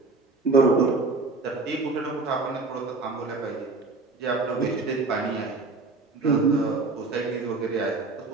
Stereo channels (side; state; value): left; quieter; 3.7 dB